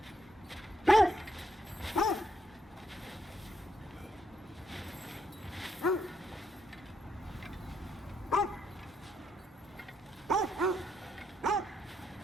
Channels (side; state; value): both; normal; correlation 0.77